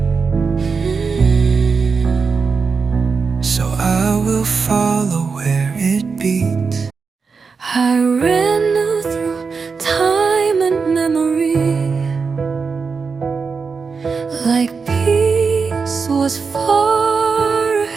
So I will follow where it beats. I ran through time and memory like peace was far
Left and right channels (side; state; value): left; quieter; 5.1 dB